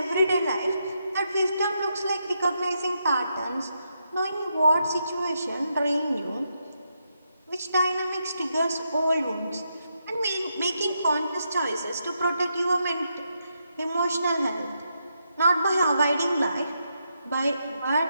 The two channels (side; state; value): both; inverted; correlation -0.82